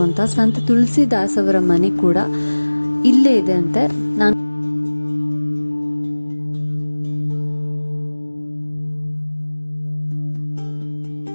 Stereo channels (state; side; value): inverted; both; correlation -1.00